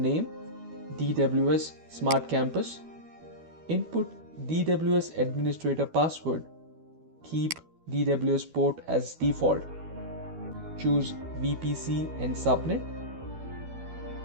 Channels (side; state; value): left; late; 12 ms